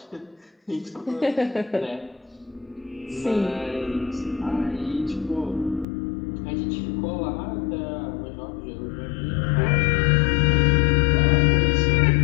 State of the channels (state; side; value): drops out; right; at 5.9 s